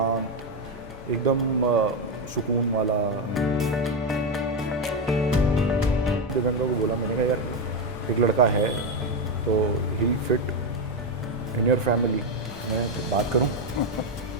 एकदम सुकून वाला। दिव्यांगा को बोला, मैंने कहा यार एक लड़का है तो he fit in your family, मैं बात करूं?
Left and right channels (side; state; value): both; normal; correlation 0.09